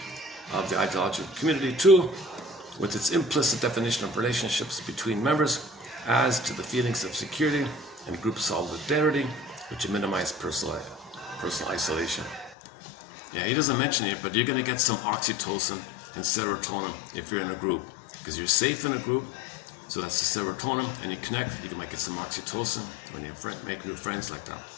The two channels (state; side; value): drops out; right; at 12.6 s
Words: of the ideological community, too, with its implicit definition of relationships between members, adds to the feelings of security and group solidarity, which minimize personal isolation. Yeah, he doesn't mention it, but you're going to get some oxytocin and serotonin if you're in a group, because you're safe in a group. So that's the serotonin, and you connect. You might get some oxytocin when you make new friends like that.